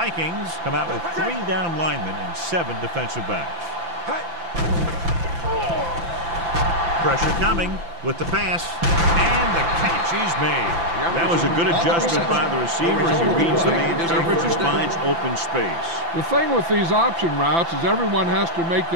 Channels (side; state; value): left; late; 5.9 ms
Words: come out with 3 down linemen and 7 defensive backs. Pressure coming with the pass, and the catch is made. That was a good adjustment by the receiver as he reads the man coverage and finds open space. The thing with these option routes is everyone has to make